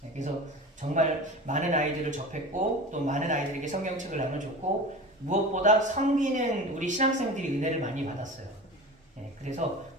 그래서 정말 많은 아이들을 접했고 또 많은 아이들에게 성경책을 나눠줬고 무엇보다 섬기는 우리 신학생들이 은혜를 많이 받았어요. 그래서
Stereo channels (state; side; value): normal; both; correlation 0.33